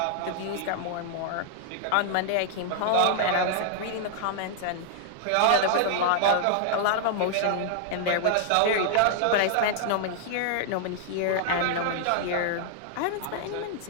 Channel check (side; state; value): both; different; correlation -0.01